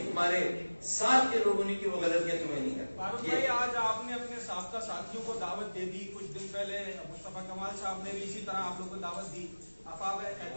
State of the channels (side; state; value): both; inverted; correlation -1.00